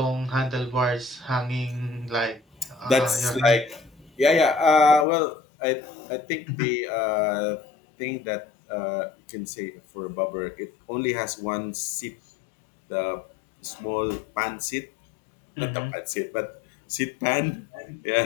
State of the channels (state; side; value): drops out; right; at 5.1 s